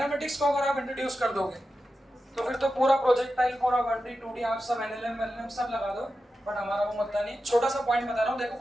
को अगर आप इंट्रोड्यूस कर दोगे तो फिर तो पूरा प्रोजेक्टाइल, पूरा 1D 2D आप सब एनएलएम एलएम सब लगा दो, बट हमारा वो मुद्दा नहीं। छोटा सा पॉइंट बता रहा हूँ, देखो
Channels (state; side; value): normal; both; correlation 0.91